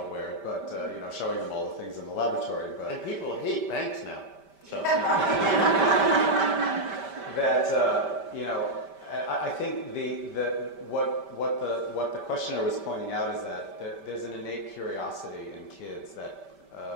wear it, but showing them all the things in the laboratory. But and people hate banks now. So. I think what the questioner was pointing out is that there's an innate curiosity in kids that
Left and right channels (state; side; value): late; left; 5.1 ms